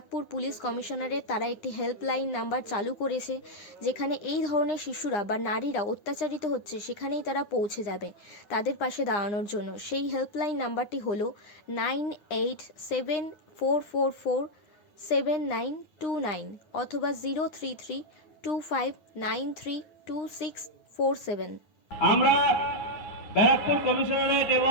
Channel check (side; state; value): right; late; 9.7 ms